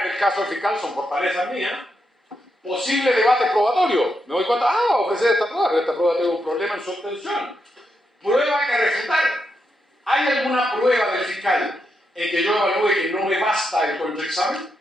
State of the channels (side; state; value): both; normal; correlation 0.83